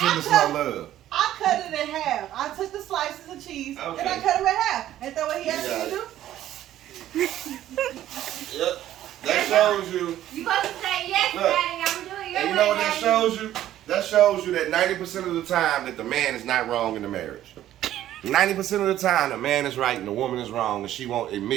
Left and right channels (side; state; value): left; quieter; 12.7 dB